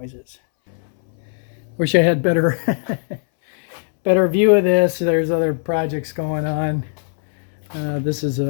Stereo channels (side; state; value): right; silent; 66 dB below the other